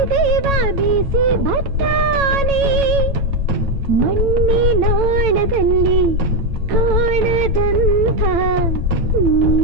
ದೇವ ಬೀಸಿ ಬರ್ತಾನೆ. ಮಣ್ಣಿನಾಳದಲ್ಲಿ ಕಾಣದಂಥ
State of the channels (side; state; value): left; late; 9.0 ms